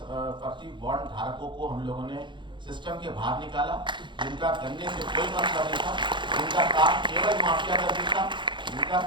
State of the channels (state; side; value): late; left; 0.23 ms